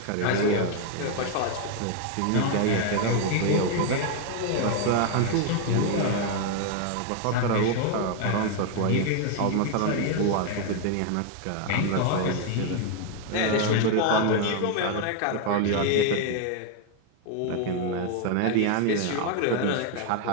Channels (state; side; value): different; both; correlation 0.00